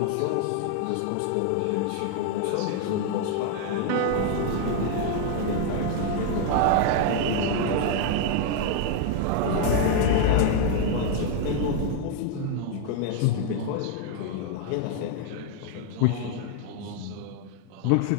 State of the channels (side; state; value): both; different; correlation 0.00